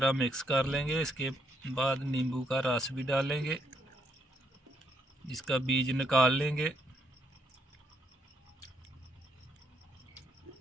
मिक्स कर लेंगे। इसके बाद नींबू का रस भी डालेंगे, इसका बीज निकाल लेंगे।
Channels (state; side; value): normal; both; correlation 0.75